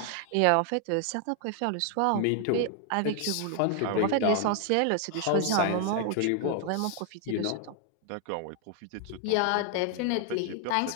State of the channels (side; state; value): both; different; correlation 0.00